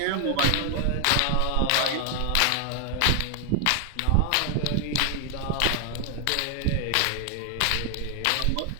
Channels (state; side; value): different; both; correlation 0.00